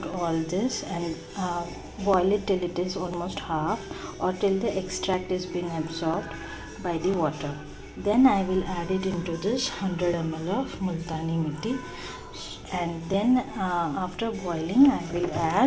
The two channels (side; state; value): both; identical; correlation 1.00